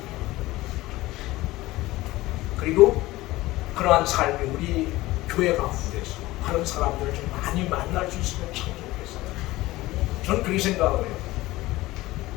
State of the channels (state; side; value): quieter; right; 18.4 dB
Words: 그리고 그러한 삶이 우리 교회 가운데서 그런 사람들을 좀 많이 만날 수 있으면 참 좋겠어요. 저는 그렇게 생각을 해요.